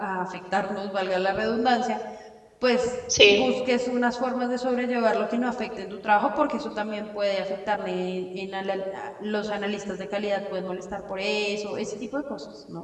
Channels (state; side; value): identical; both; correlation 1.00